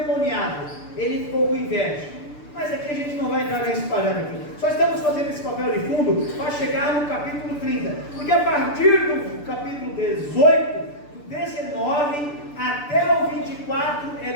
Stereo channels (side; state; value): right; late; 6.8 ms